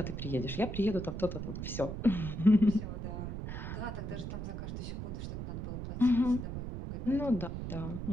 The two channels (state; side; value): noise; right; rumble, 5 dB below the sound